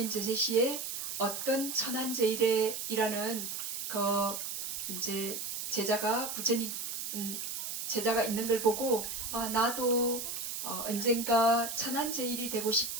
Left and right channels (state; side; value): noise; right; hiss, 4 dB below the sound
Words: 제시시에 어떤 천안제일이라는 이제 제자가 제자가 있는 걸 보고 나도 언젠가 천안제일이 되고